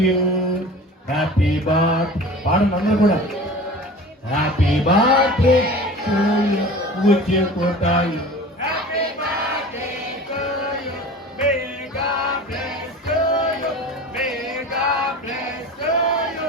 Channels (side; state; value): both; normal; correlation 0.38